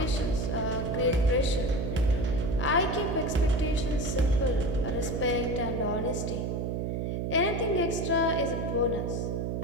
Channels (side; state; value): right; noise; hum, 1 dB below the sound